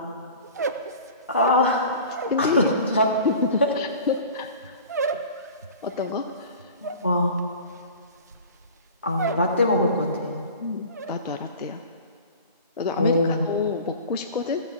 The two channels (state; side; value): inverted; both; correlation -0.40